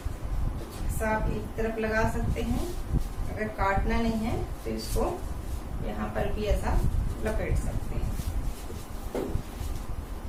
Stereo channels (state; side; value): identical; both; correlation 1.00